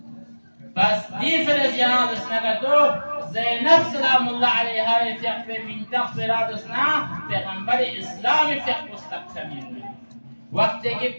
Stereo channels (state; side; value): inverted; both; correlation -1.00